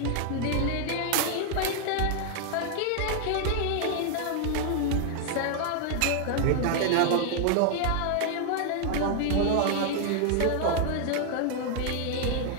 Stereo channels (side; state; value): both; different; correlation 0.00